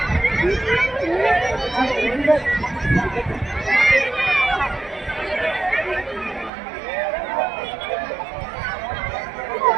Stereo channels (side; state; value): left; drops out; at 6.5 s